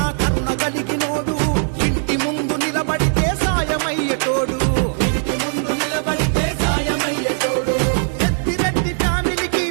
కరుణ కలిగినోడు. ఇంటి ముందు నిలబడితే సాయమయ్యేటోడు, పెద్దిరెడ్డి ఫ్యామిలీకి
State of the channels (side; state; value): left; silent; digital silence